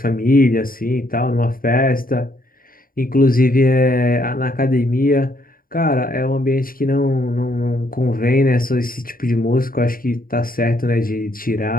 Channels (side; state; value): right; late; 0.41 ms